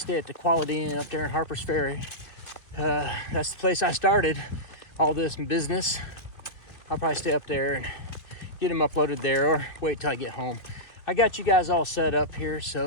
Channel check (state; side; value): late; right; 2.6 ms